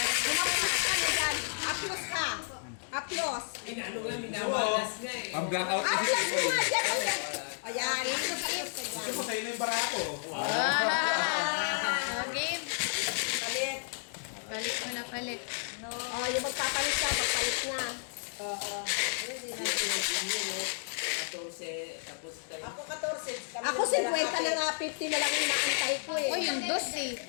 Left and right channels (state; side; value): silent; right; digital silence